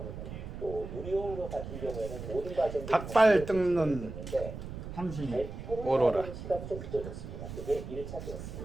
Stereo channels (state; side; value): noise; right; rumble, 9 dB below the sound